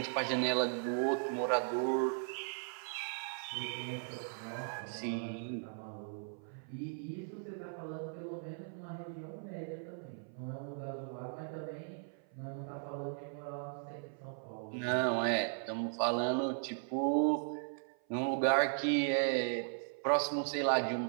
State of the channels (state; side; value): silent; left; 53 dB below the other